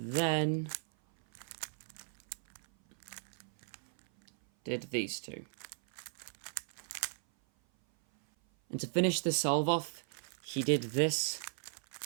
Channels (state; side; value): silent; left; 54 dB below the other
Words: did these two. And to finish the solve off, he did this